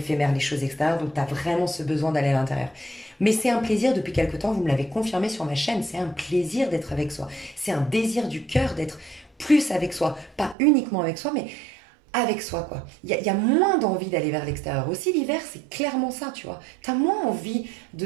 les choses extérieures, donc tu as vraiment ce besoin d'aller à l'intérieur. Mais c'est un plaisir depuis quelque temps, vous me l'avez confirmé sur ma chaîne, c'est un plaisir d'être avec soi. C'est un désir du cœur d'être plus avec soi. Pas uniquement avec soi, mais avec soi, quoi. Il y a moins d'envie d'aller vers l'extérieur. Aussi, l'hiver, c'est clairement ça, tu vois. Tu as moins envie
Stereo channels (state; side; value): drops out; left; at 10.6 s